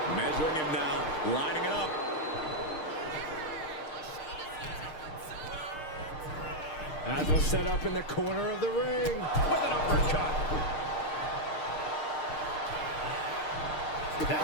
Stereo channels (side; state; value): right; late; 6.5 ms